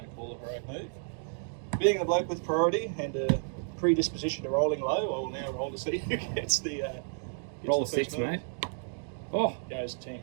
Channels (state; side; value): silent; left; digital silence